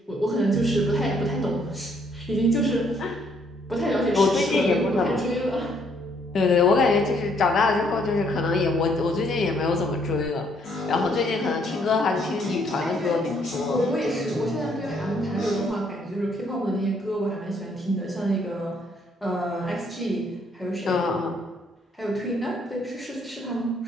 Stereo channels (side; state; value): both; normal; correlation 0.68